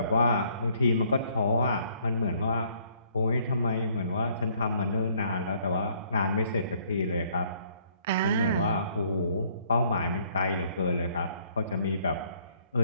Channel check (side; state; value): both; inverted; correlation -0.64